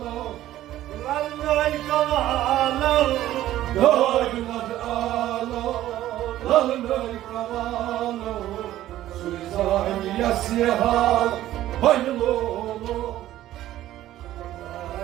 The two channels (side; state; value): left; quieter; 13.8 dB